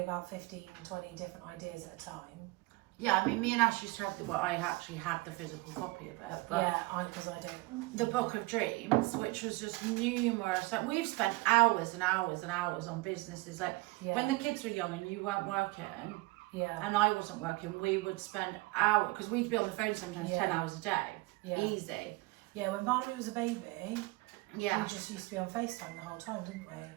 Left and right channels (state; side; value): quieter; left; 22.5 dB